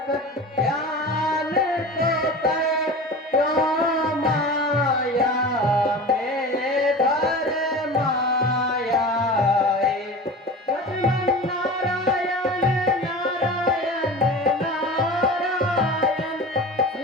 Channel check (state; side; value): normal; both; correlation 0.33